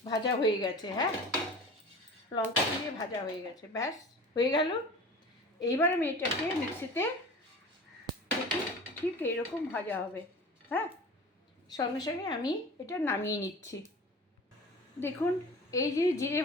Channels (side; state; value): both; normal; correlation 0.38